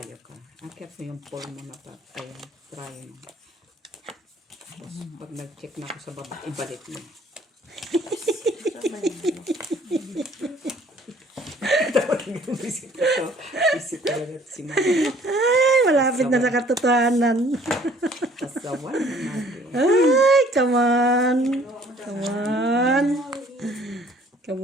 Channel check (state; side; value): normal; both; correlation 0.57